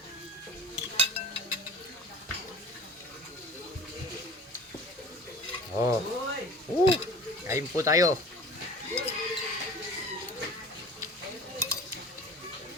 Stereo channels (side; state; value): both; normal; correlation 0.42